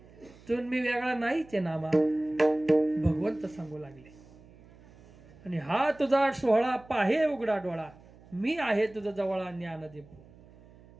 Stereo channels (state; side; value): noise; right; hum, 24 dB below the sound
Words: तू मी वेगळा नाहीच आहे नामा. भगवंत सांगू लागले. आणि हा तुझा सोहळा पाहे उघडा डोळा, मी आहे तुझा जवळा ज्ञान दीपो.